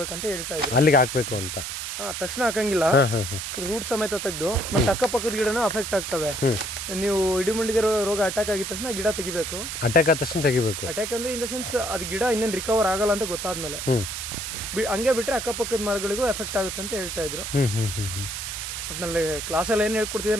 ಹೇಳ್ತಾ ಇದ್ರು. ಅಲ್ಲಿಗೆ ಹಾಕ್ಬೇಕು ಅಂತ ತಕ್ಷಣ ಹಾಕಂಗಿಲ್ಲ, ರೂಟ್ ಸಮೇತ ತೆಗೆದು ಮತ್ತೆ ಅಕ್ಕಪಕ್ಕದ ಗಿಡನೂ ಅಫೆಕ್ಟ್ ಆಗ್ತವೆ. ನೀವು ಇಡಿಮುಂಡಿಗೆ ರೋಗ ಅಟ್ಯಾಕ್ ಆಗಿದ ತಕ್ಷಣ ಗಿಡ ತೆಗಿಬೇಕು. ಅಟ್ಯಾಕ್ ಆದ ತಕ್ಷಣ ತೆಗಿಬೇಕು. ಅಟ್ಯಾಕ್ ಅಂದ್ರೆ ಇನ್ ದ ಸೆನ್ಸ್ ಅದು ಗಿಡ ಇನ್ನೇನು ರಿಕವರ್ ಆಗಲ್ಲ ಅಂತ ಗೊತ್ತಾದ್ಮೇಲೆ ಹಂಗೆ ಬಿಟ್ರೆ ಅಕ್ಕಪಕ್ಕದ ಮರಗಳಿಗೂ ಎಫೆಕ್ಟ್ ಆಗುತ್ತೆ ಅಂತ ಹೇಳ್ತಾ ಇದ್ರು. ಒಟ್ಟಿನಲ್ಲಿ ಕ್ಲಾಸಲ್ಲಿ ಏನು ಹೇಳ್ಕೊಡ್ತಿದ್ರೆ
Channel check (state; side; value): noise; right; hiss, 5 dB below the sound